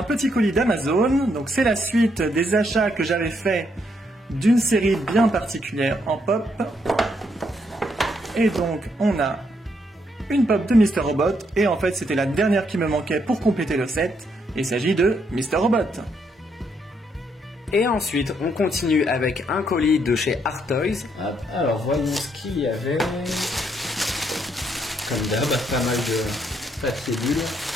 petit colis d'Amazon, donc c'est la suite des achats que j'avais fait d'une série bien particulière en pop. Et donc, on a une pop de Mr. Robot, et en fait, c'était la dernière qui me manquait pour compléter le set. Il s'agit de Mr. Robot. Et ensuite, on continue avec un colis de chez Art Toys. Alors, voyons ce qu'il y avait. Comme d'hab, pas mal de papier bulle.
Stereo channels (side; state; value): both; normal; correlation 0.74